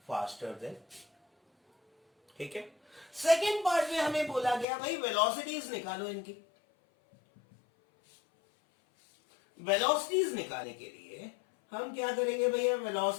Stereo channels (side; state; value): right; drops out; at 4.7 s